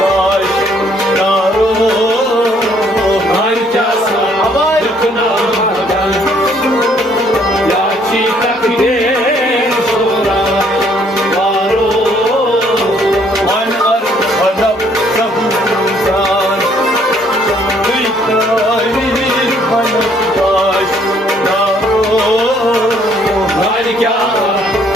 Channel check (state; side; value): normal; both; correlation 0.64